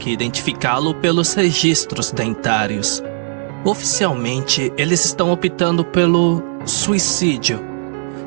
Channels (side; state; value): left; silent; digital silence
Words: identificá-lo pelos registros dentários. Oficialmente, eles estão optando pelo suicídio.